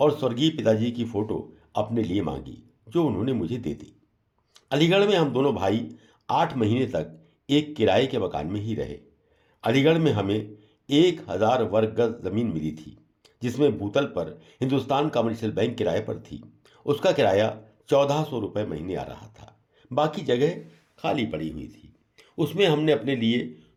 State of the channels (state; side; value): identical; both; correlation 1.00